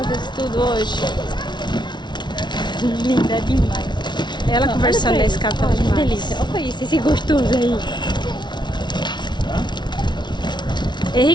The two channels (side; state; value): right; late; 0.21 ms